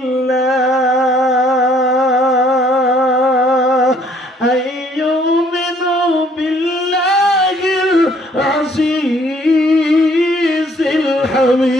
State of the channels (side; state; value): both; normal; correlation 0.62